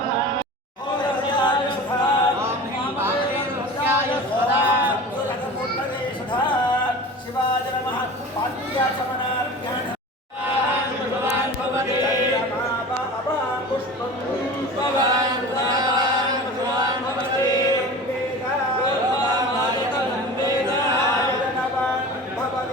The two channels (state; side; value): normal; both; correlation 0.36